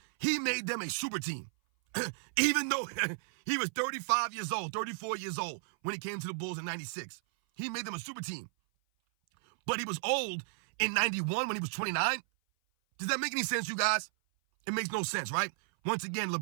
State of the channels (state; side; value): silent; left; 55 dB below the other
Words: he made them a super team. Even though he was 35 years old, 34 years old when he came to the Bulls in 96. He made them a super team. But he was old in 91 when he was 29. Does that make any sense, you guys? It makes no sense, right? Once again,